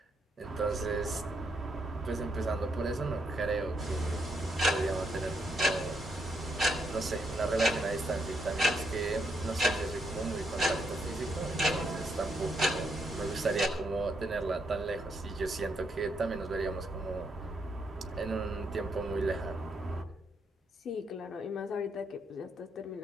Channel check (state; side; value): normal; both; correlation 0.77